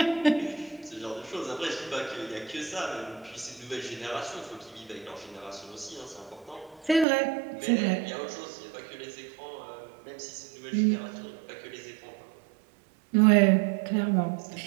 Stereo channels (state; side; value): drops out; left; at 7.1 s